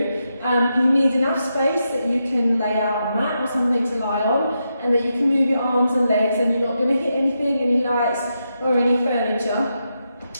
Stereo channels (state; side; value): inverted; both; correlation -0.85